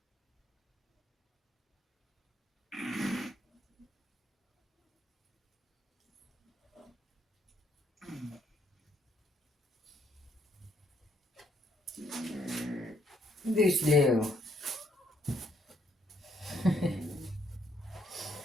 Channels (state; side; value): normal; both; correlation 0.71